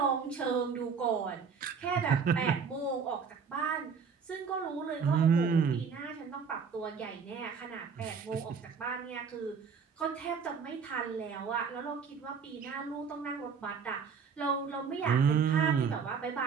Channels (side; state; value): left; quieter; 6.0 dB